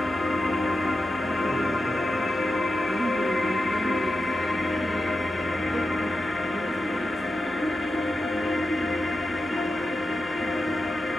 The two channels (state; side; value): normal; both; correlation 0.90